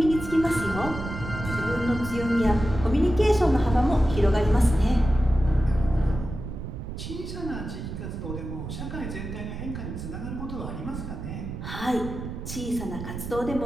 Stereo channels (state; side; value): noise; right; rumble, 8 dB below the sound